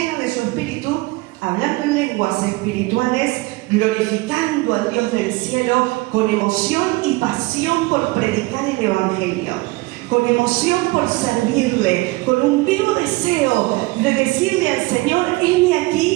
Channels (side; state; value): left; quieter; 22.0 dB